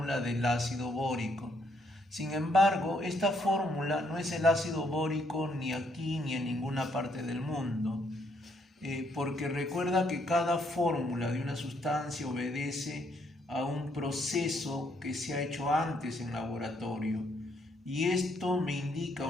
del ácido bórico. Sin embargo, esta fórmula no es el ácido bórico ni aquí ni en ninguna parte del mundo. Porque recuerda que cada fórmula de una sustancia obedece a un proceso que se ha hecho antes en laboratorio, y esto me indica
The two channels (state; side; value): normal; both; correlation 0.71